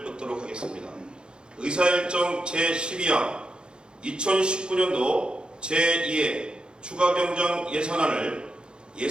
듣도록 하겠습니다. 의사일정 제12항 2019년도 제2회 추가경정 예산안을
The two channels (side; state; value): left; late; 0.050 ms